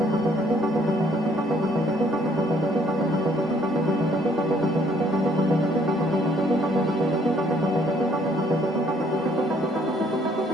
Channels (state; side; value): normal; both; correlation 0.64